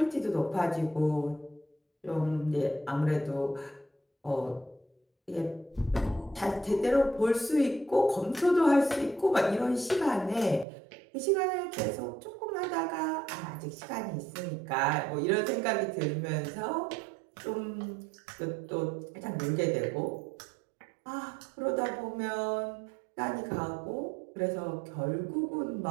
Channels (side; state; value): left; drops out; at 10.7 s